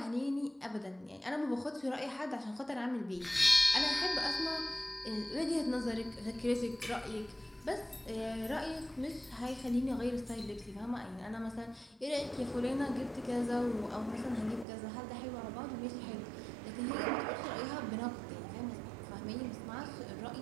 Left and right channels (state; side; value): drops out; left; at 14.7 s